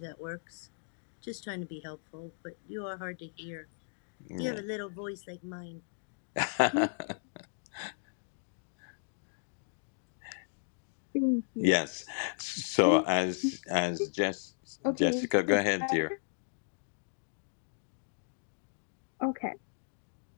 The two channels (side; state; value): right; silent; digital silence